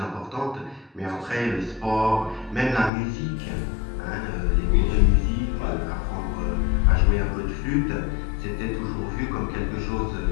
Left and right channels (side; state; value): right; drops out; at 2.9 s